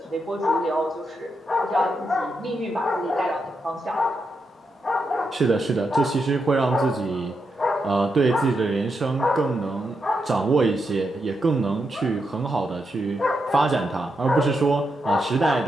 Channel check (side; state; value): both; normal; correlation 0.84